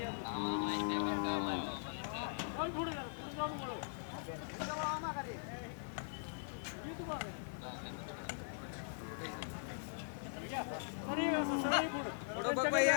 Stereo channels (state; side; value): silent; right; digital silence